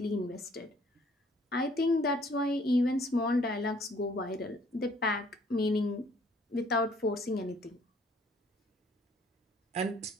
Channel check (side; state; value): both; normal; correlation 0.60